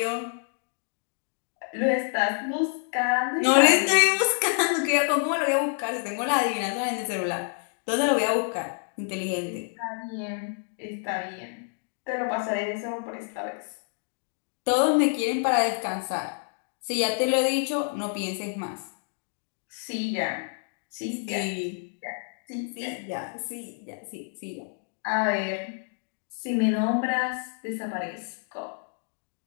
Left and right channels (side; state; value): right; silent; 59 dB below the other